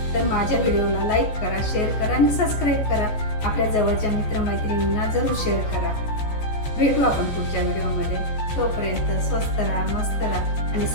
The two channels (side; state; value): right; late; 14 ms